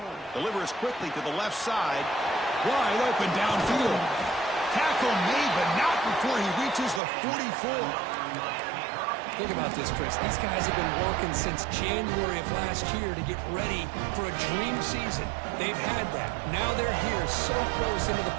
Delivers quickly to the left side. Wide open downfield. Tackle made, but not before he reaches the 44. Think about this, Chris. These guys have been working since January of last year to get ready for a dream season. They've had that. Now they're here so close into the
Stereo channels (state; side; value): drops out; left; at 7.0 s